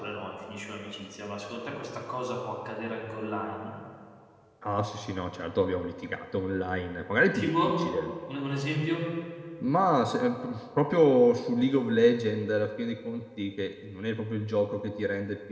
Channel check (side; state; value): both; identical; correlation 1.00